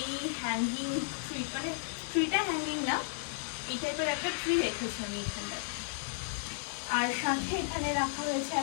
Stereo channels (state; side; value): silent; right; digital silence